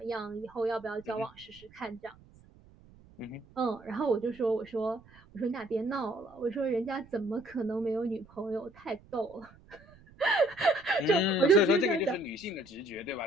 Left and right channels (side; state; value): right; noise; rumble, 25 dB below the sound